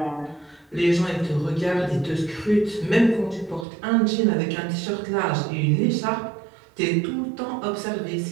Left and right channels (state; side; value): drops out; left; at 3.7 s